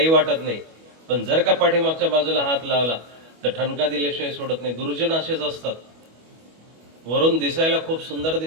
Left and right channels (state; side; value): late; left; 25 ms